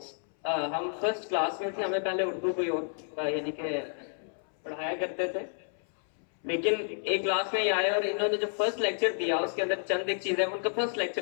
ہم فرسٹ کلاس میں تھے. ہمیں پہلے اردو کوئی اور یعنی کہ پڑھایا کرتے تھے، لیکن ایک کلاس میں ہی آئے اور انہوں نے جو فرسٹ لیکچر دیا اس کے اندر چند ایک چیزیں، ان کا فرسٹ لیکچر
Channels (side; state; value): right; silent; 58 dB below the other